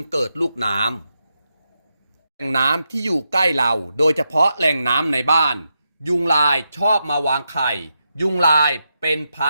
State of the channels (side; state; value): both; inverted; correlation -0.85